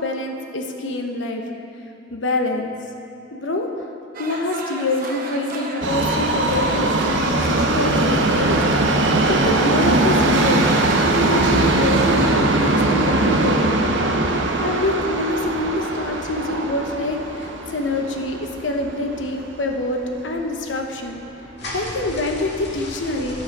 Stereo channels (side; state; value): both; normal; correlation 0.21